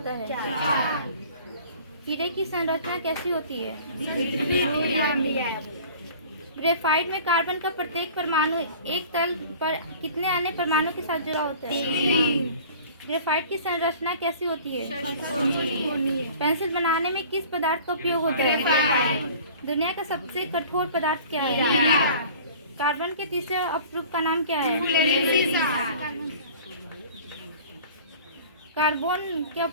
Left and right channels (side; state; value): both; inverted; correlation -0.45